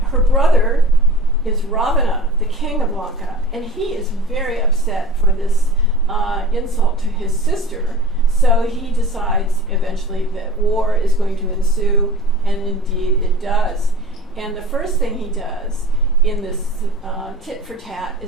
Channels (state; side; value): normal; both; correlation 0.39